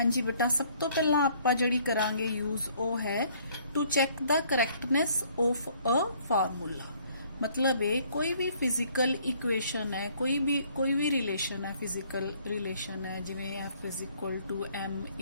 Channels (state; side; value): inverted; both; correlation -0.61